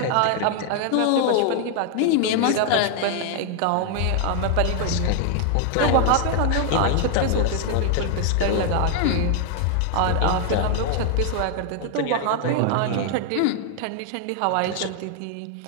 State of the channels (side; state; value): both; different; correlation 0.00